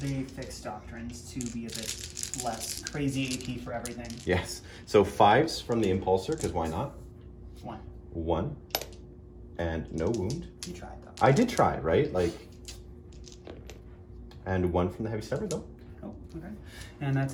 fix doctrines to be a bit less crazy AP for everything. Yes. So 5s from the Impulsor, because why not? 1. 1. And no wound. You tried though. I did try, right? Like, and 1 from the Heavy Stepper though. Oh, okay. And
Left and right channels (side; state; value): both; identical; correlation 1.00